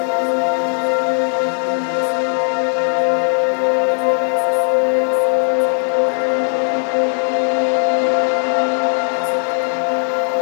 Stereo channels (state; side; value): silent; right; digital silence